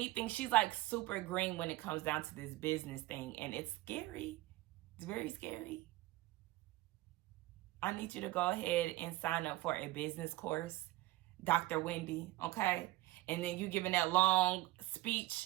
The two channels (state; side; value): quieter; left; 17.7 dB